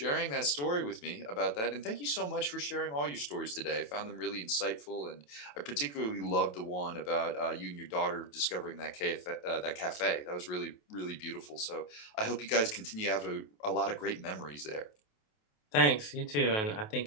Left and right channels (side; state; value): right; late; 28 ms